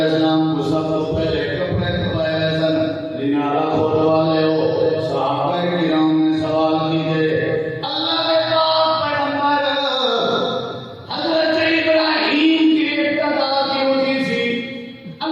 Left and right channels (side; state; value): both; identical; correlation 1.00